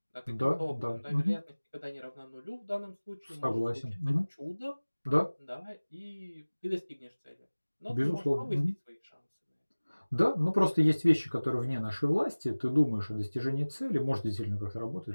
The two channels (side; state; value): both; inverted; correlation -1.00